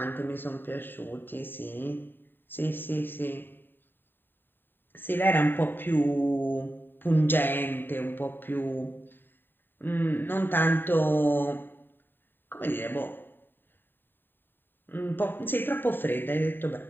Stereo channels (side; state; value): right; late; 0.095 ms